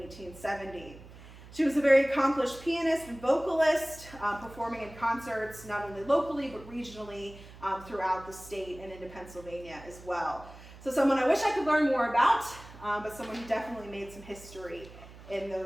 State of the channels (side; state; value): right; noise; hum, 18 dB below the sound